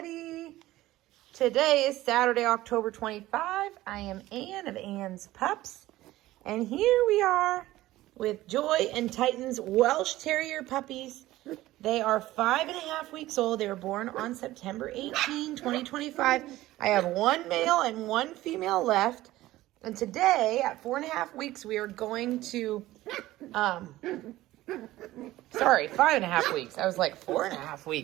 Today is Saturday, October 25. I am Ann of Ann's Pups. And here we are with Joy and Titan's Welsh Terrier puppies. They are 5.5 weeks old. They were born on September 18, 2025. I have one male and one female left. And today, at 4.5 weeks, we are going to... Sorry, 5.5 weeks. I was like 4.5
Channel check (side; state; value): left; quieter; 16.3 dB